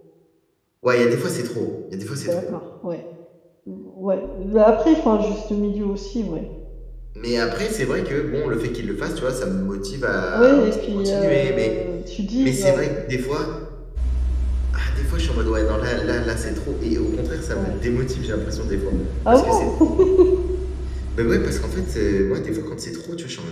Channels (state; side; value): identical; both; correlation 1.00